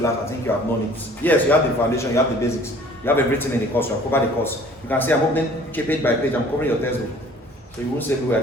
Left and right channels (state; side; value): normal; both; correlation 0.52